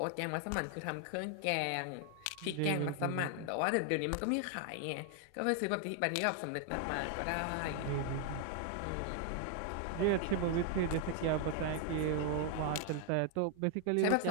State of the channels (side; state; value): both; different; correlation 0.00